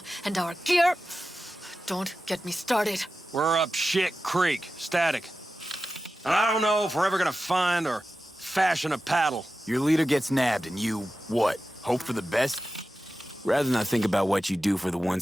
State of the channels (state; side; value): normal; both; correlation 0.93